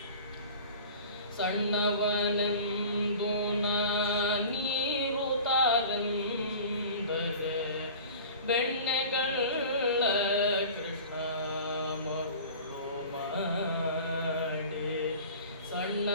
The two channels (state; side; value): inverted; both; correlation -0.41